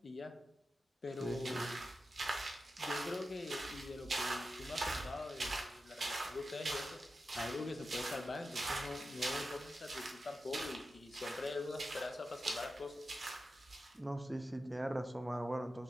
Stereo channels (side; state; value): both; normal; correlation 0.91